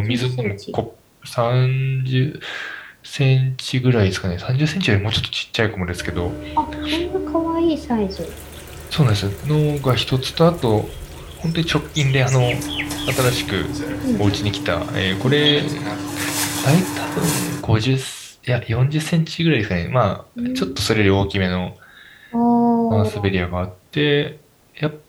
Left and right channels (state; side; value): identical; both; correlation 1.00